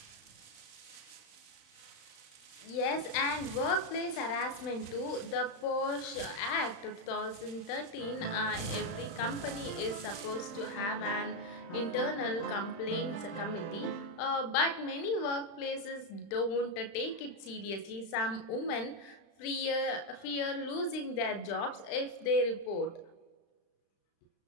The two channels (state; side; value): late; right; 35 ms